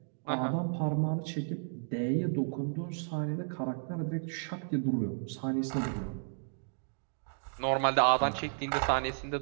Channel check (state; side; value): silent; left; digital silence